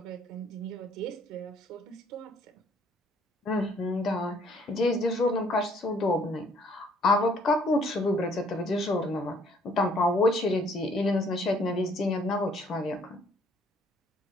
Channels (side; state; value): both; normal; correlation 0.63